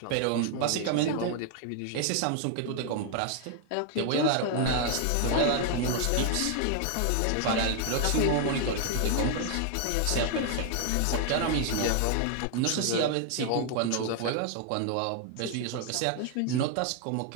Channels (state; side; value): different; both; correlation 0.00